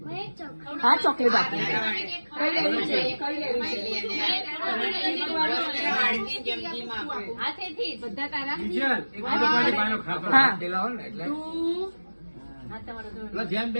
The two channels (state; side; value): inverted; both; correlation -1.00